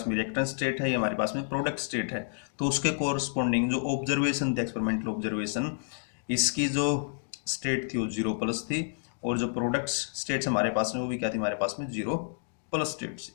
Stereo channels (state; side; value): silent; right; digital silence